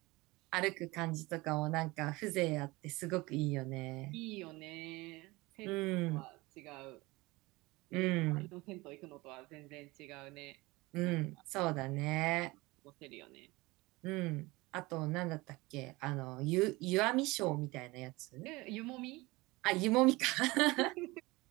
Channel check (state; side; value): quieter; left; 22.1 dB